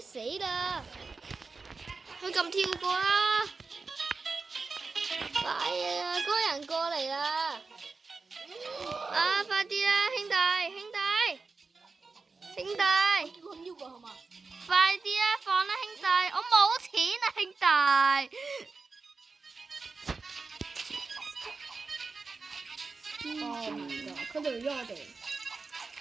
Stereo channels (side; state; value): left; quieter; 4.2 dB